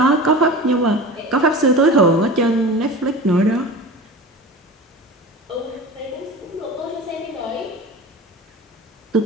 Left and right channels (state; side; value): normal; both; correlation 0.34